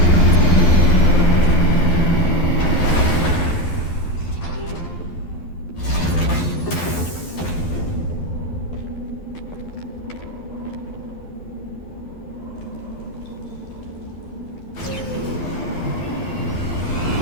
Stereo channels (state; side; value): late; right; 12 ms